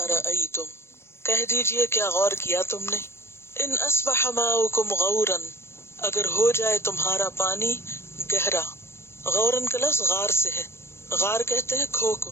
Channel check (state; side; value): late; right; 0.12 ms